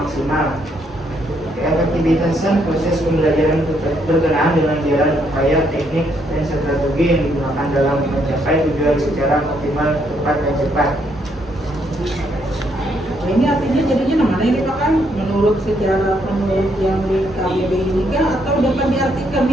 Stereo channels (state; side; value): normal; both; correlation 0.73